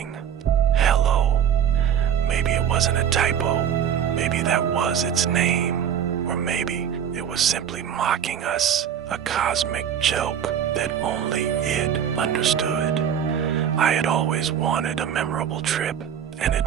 "Hello." Maybe it wasn't a typo. Maybe that was its name. Or maybe it was simply mocking us, a cosmic joke that only it understood. I had always wanted a memorable trip, an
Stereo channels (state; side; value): quieter; left; 8.7 dB